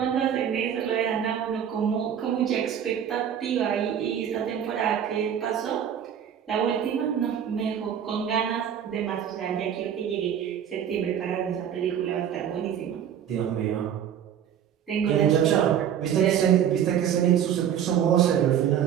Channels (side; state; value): left; quieter; 9.1 dB